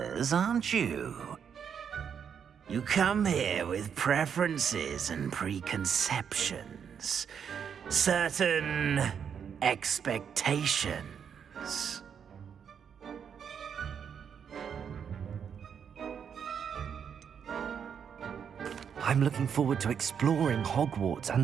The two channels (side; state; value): left; quieter; 7.5 dB